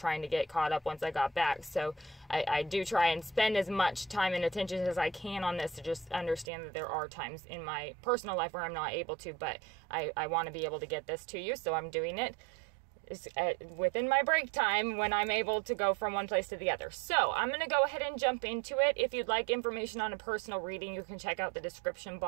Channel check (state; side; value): drops out; left; at 6.5 s